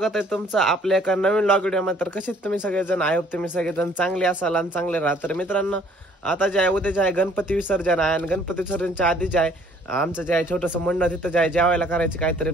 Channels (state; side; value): normal; both; correlation 0.59